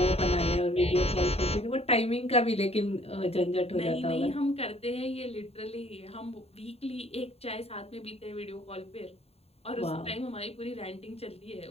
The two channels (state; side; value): late; right; 0.29 ms